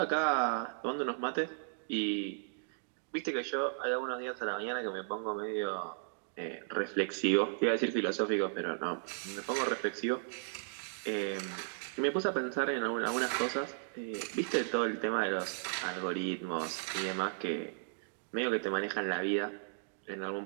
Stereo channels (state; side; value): silent; left; digital silence